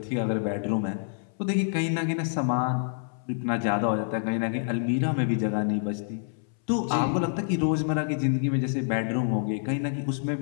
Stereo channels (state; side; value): silent; right; 60 dB below the other